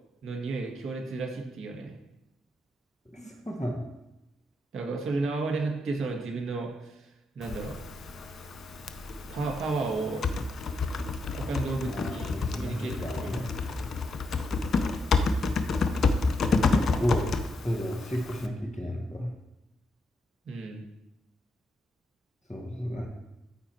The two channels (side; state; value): both; normal; correlation 0.80